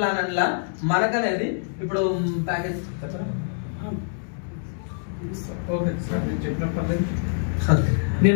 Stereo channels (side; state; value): right; silent; digital silence